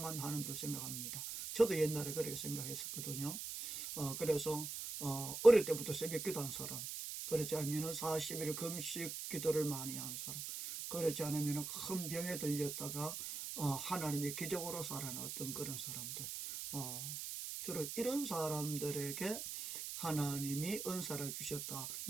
하는 줄 생각합니다. 저도 옛날에 그렇게 생각했었거든요. 그래서 어릴 때부터 새벽 기도한 사람, 그렇지 않으면 40일 금식 기도를 많이 한 사람, 그렇지 않으면 큰 병에 들렸다가 하나님의 기적으로 살아났던 그런 사람들, 주로 이런 사람들에게 하나님이 은사를 주셨다.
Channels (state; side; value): noise; right; hiss, 5 dB below the sound